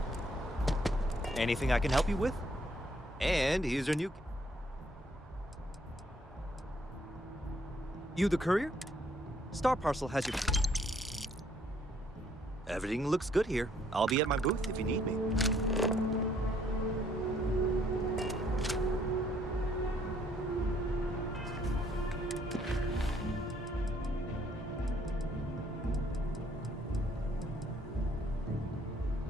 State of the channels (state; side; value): normal; both; correlation 0.66